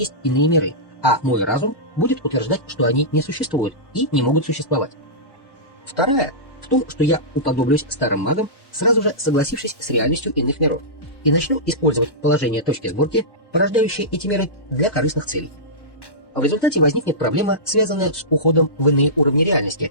иные миры, а мой разум будет утверждать, что они не существуют и не могут существовать. Вторая в том, что я уподоблюсь старым магам, сразу же согласившись с реальностью иных миров, и начну использовать положение точки сборки, порождающие эти миры, для корыстных целей. В результате возникнет проблема, связанная с уходом в иные уровни реальности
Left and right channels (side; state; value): right; late; 1.1 ms